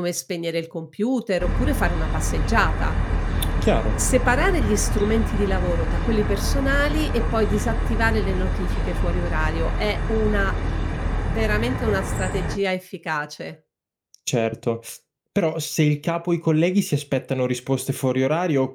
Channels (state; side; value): identical; both; correlation 1.00